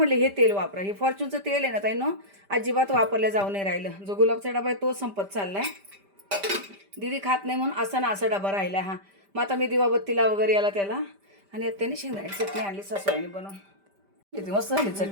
हे तेल वापरा. हे फॉर्च्यूनचं तेल आहे ना ताई, अजिबात वापरल्या जाऊ नाही राहिलं. जो गुलाबचा डबा आहे तो संपत चाललाय. दीदी खात नाही म्हणून असा ना असा डबा राहिला हा. मग आता मी दिवाबत्तीला वगैरे याला त्याला. आणि आता त्यांनी शेंगदाण्याची चटणी आणली सासूबाईंनी बनवून. किती मस्त झाली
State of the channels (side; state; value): left; late; 5.1 ms